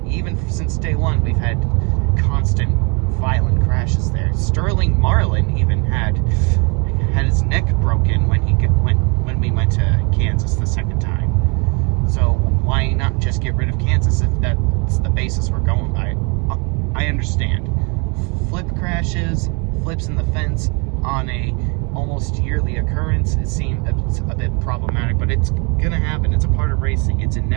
Even since day one, we've had constant violent crashes there. Sterling Marlin even had his neck broken when we went to Kansas the second time. So why not just get rid of Kansas if that's the basis we're going by? I understand. Flip crashes, flips in the fence on a almost yearly occurrence, it seemed a bit problematic, but it's gonna happen. It's a part of racing. It's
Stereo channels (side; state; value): left; quieter; 32.0 dB